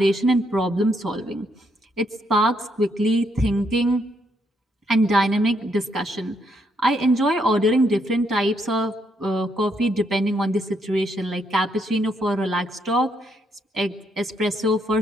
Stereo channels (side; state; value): both; normal; correlation 0.75